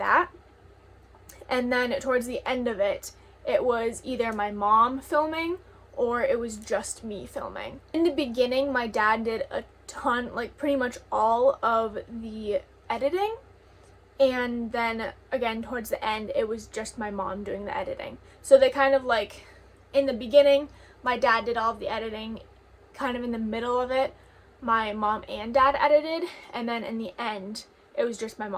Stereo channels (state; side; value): identical; both; correlation 1.00